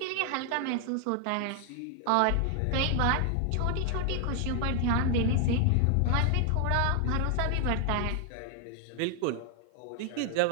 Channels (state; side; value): different; both; correlation 0.00